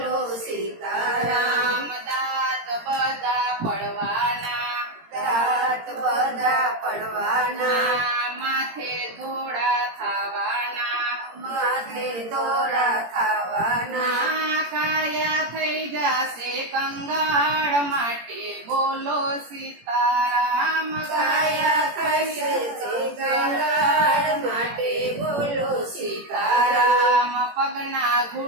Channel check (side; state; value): left; late; 17 ms